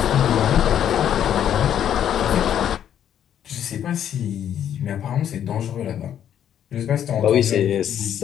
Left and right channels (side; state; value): right; quieter; 9.9 dB